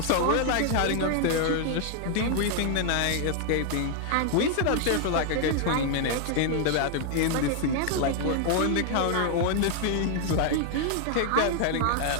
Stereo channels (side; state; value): both; different; correlation 0.00